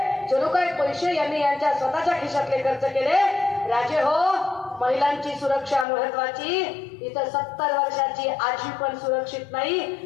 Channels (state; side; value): drops out; right; at 5.9 s